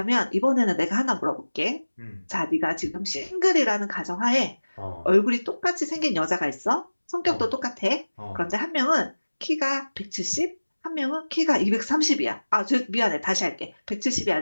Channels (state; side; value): inverted; both; correlation -1.00